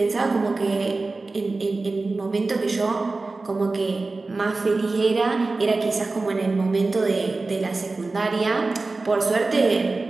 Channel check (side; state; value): left; quieter; 3.5 dB